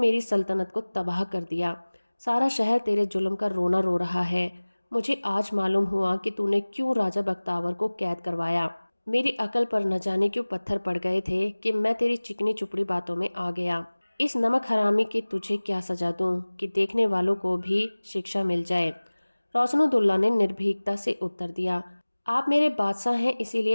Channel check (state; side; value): inverted; both; correlation -1.00